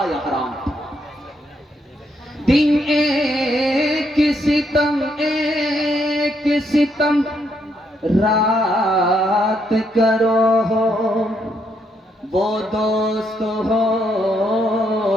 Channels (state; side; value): normal; both; correlation 0.76